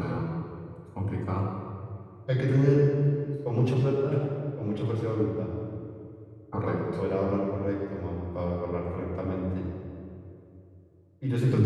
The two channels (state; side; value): identical; both; correlation 1.00